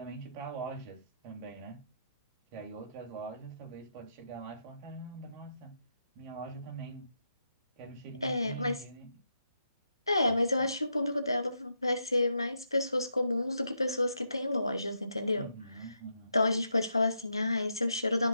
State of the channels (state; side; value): inverted; both; correlation -0.82